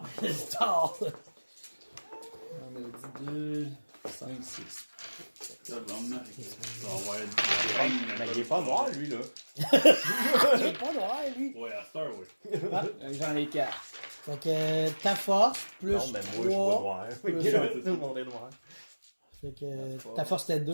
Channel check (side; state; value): both; inverted; correlation -1.00